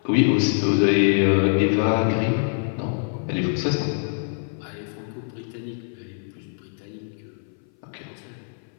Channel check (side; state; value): right; silent; 59 dB below the other